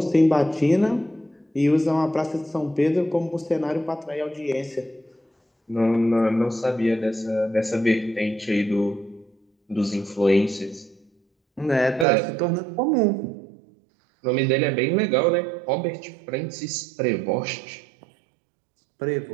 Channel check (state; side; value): drops out; left; at 12.1 s